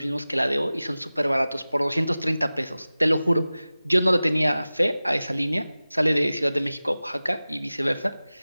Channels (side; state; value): both; inverted; correlation -0.97